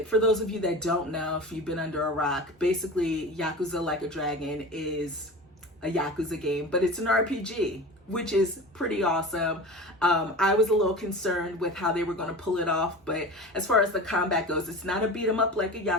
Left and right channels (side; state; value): both; normal; correlation 0.33